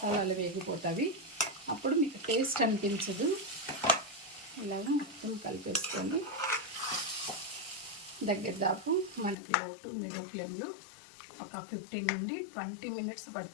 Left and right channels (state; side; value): drops out; right; at 9.3 s